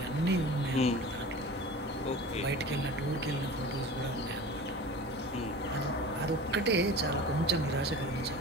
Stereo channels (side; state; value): both; normal; correlation 0.37